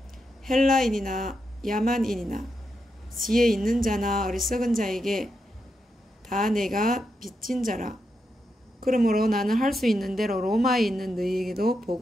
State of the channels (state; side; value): normal; both; correlation 0.85